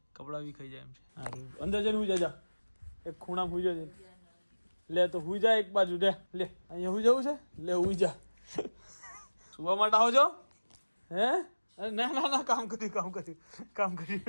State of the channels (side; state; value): both; inverted; correlation -1.00